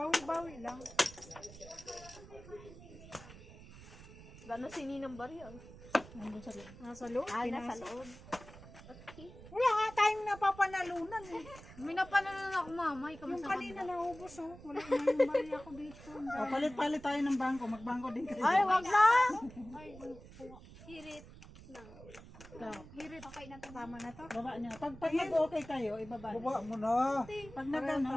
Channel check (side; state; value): right; noise; rumble, 17 dB below the sound